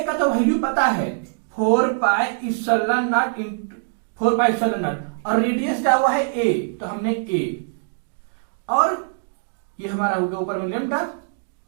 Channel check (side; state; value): left; silent; digital silence